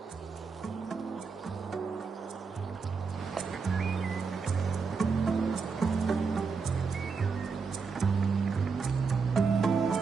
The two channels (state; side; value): quieter; left; 5.1 dB